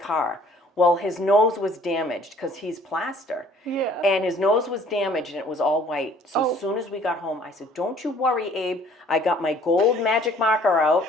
Well, his nose was damaged because he's plaster. Yeah. And his nose was damaged and it was all white. So as soon as we got home, I said, don't you worry, Abe. I got my gold magic marker out.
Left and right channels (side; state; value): both; normal; correlation 0.56